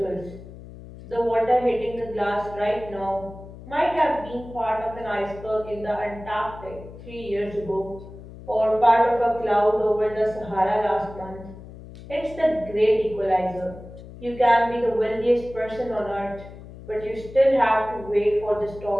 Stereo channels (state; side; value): noise; left; hum, 16 dB below the sound